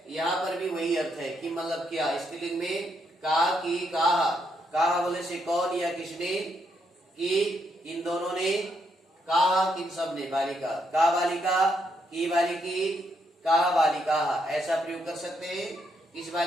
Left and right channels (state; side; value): normal; both; correlation 0.77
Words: यहाँ पर भी वही अर्थ है। किम मतलब क्या, स्त्रीलिंग में का, की, काहा, काहा बोले से कौन या किसने, की इन दोनों ने, काहा किन सब ने, बालिका, का बालिका, की बालिकी, काहा बालिका, ऐसा प्रयोग कर सकते हैं। किस